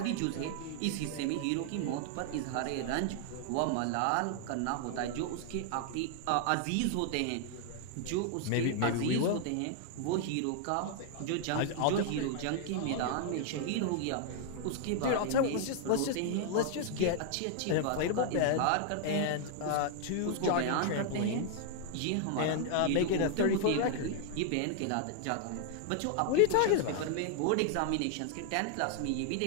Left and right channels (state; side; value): different; both; correlation 0.00